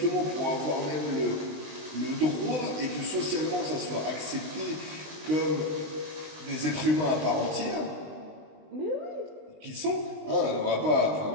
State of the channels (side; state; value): left; late; 20 ms